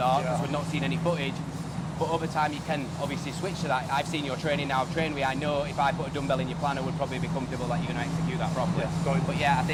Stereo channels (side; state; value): both; identical; correlation 1.00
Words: because we've not seen any footage, but over time you can obviously switch to that. I've seen your training now, I've trained with you, I know if I put a dumbbell in your plan I would probably be comfortable that you're going to execute that properly. But yeah, I